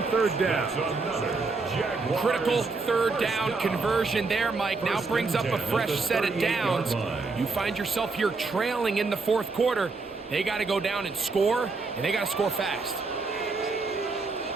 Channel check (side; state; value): left; quieter; 4.0 dB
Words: 3rd down. Critical 3rd down conversion there, Mike. Now brings up a fresh set of downs. You find yourself here trailing in the 4th quarter. They got to go down and score, and they got to score fast.